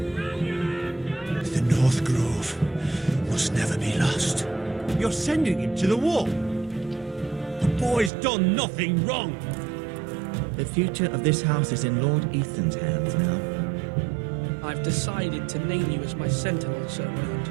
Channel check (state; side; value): drops out; left; at 8.1 s